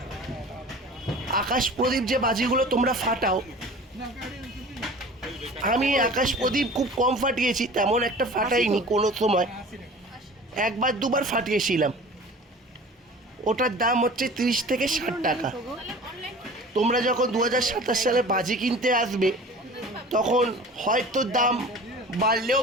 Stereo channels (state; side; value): normal; both; correlation 0.41